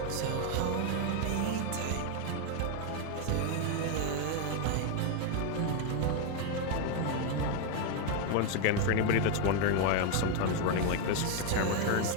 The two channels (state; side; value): different; both; correlation 0.01